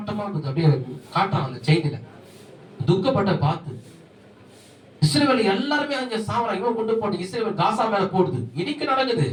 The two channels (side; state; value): both; identical; correlation 1.00